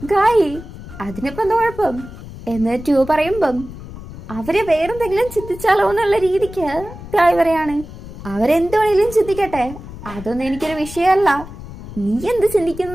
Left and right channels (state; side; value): noise; left; rumble, 13 dB below the sound